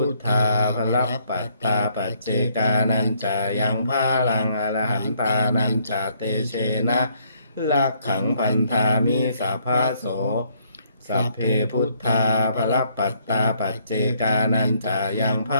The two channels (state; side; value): inverted; both; correlation -0.68